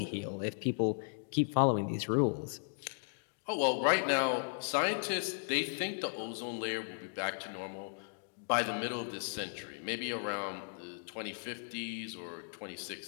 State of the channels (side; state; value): right; silent; digital silence